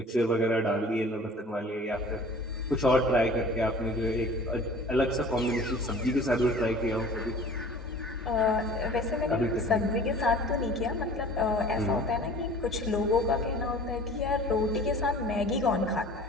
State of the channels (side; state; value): both; normal; correlation 0.45